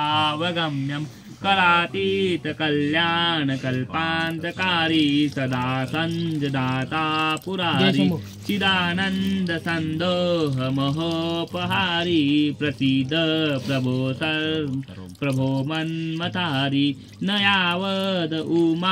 करातीतकल्याणकल्पान्तकारी सदा सञ्जदाता पुरारी चिदानन्दसन्दोहमहोपहारी प्रसीद प्रभो मन्मथारी न यावद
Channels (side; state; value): both; identical; correlation 1.00